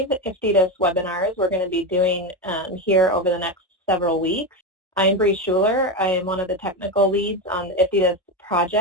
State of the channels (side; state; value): both; normal; correlation 0.15